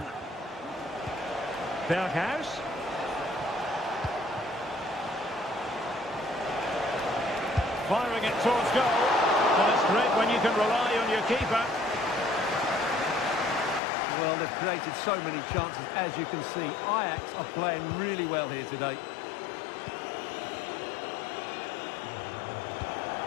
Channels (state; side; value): drops out; right; at 13.8 s